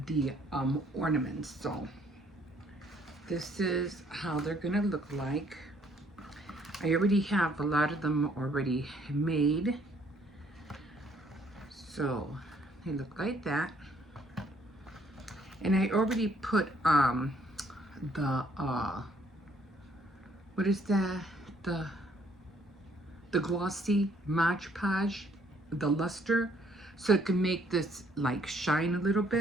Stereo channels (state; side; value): normal; both; correlation 0.64